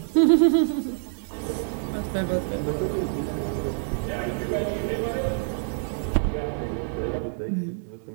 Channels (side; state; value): left; silent; digital silence